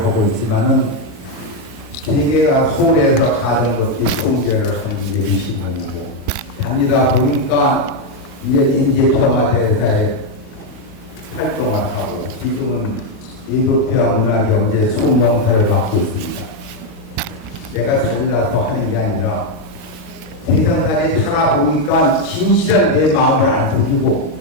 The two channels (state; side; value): normal; both; correlation 0.03